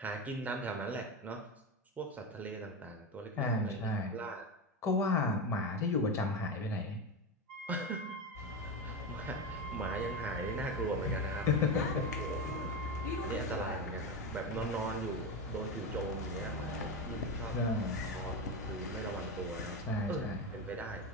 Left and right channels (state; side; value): normal; both; correlation 0.17